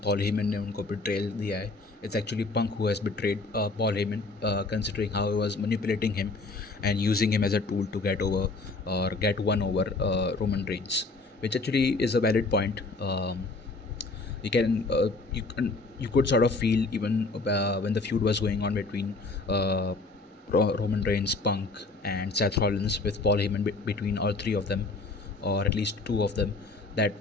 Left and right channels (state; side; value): quieter; right; 3.5 dB